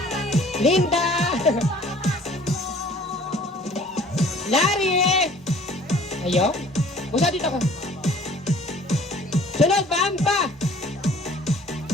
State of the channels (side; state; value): both; normal; correlation 0.52